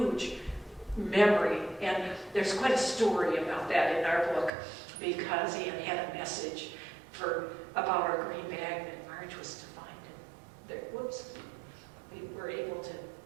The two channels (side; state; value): left; drops out; at 4.5 s